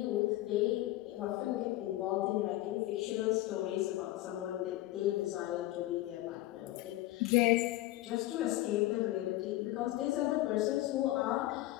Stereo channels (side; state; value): right; quieter; 16.5 dB